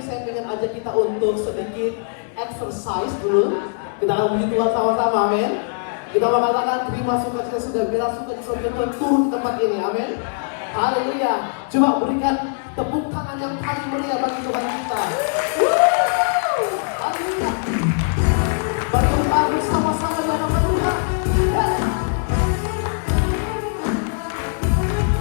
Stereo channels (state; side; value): silent; right; digital silence